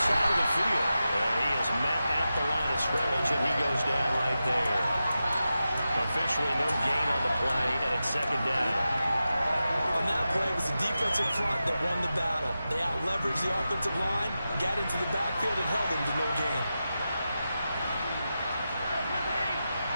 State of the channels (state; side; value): inverted; both; correlation -0.91